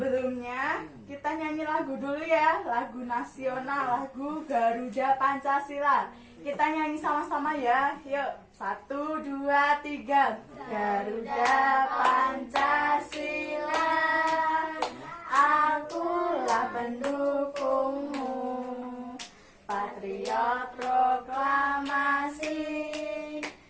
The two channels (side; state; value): both; identical; correlation 1.00